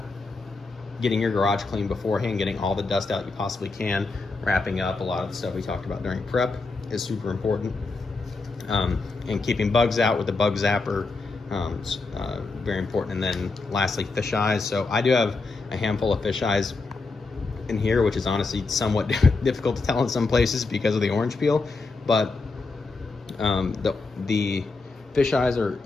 getting your garage clean beforehand, getting all the dust out you possibly can, wrapping up a lot of the stuff we talked about during prep is super important, and keeping bugs out with the bug zapper, very important. And then lastly, fish eyes. So I do have a handful of fish eyes in here, which is honestly somewhat difficult to tell in some places because of the orange peel, but the fish eyes are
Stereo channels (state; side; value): quieter; right; 3.8 dB